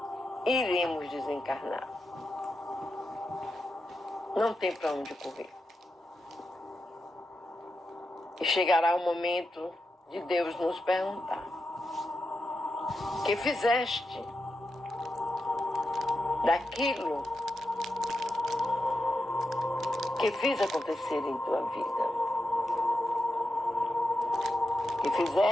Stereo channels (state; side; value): normal; both; correlation 0.87